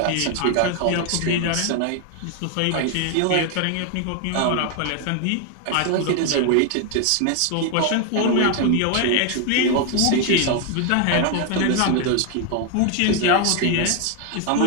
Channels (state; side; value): different; both; correlation 0.01